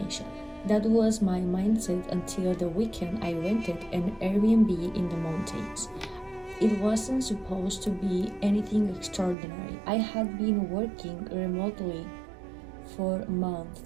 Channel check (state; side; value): drops out; left; at 9.3 s